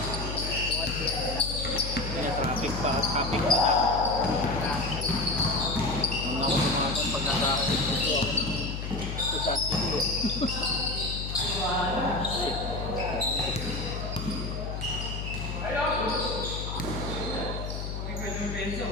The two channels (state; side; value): noise; left; hum, 5 dB below the sound